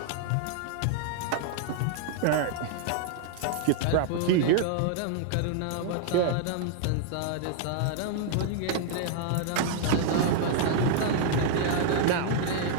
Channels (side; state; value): both; different; correlation -0.01